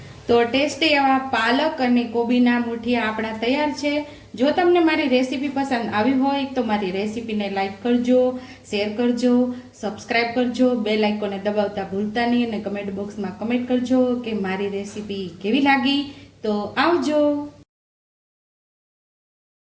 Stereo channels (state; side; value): identical; both; correlation 1.00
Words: તો ટેસ્ટી એવા પાલક અને કોબીના મુઠિયા આપણા તૈયાર છે. જો તમને મારી રેસીપી પસંદ આવી હોય તો મારી રેસીપીને લાઈક કરજો, શેર કરજો, સબસ્ક્રાઈબ કરજો, બેલ આઇકોનને દબાવતા ભૂલતા નહીં, અને કમેન્ટ બોક્સમાં કમેન્ટ કરજો કે મારી રેસીપી કેવી લાગી. તો આવજો.